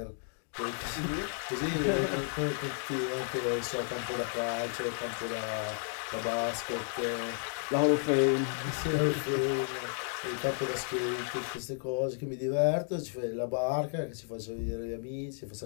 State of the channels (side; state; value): right; silent; 56 dB below the other